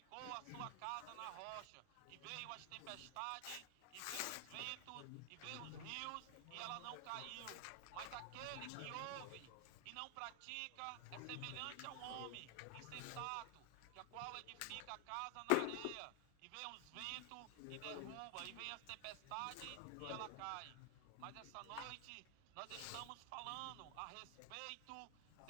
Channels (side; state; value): both; different; correlation 0.00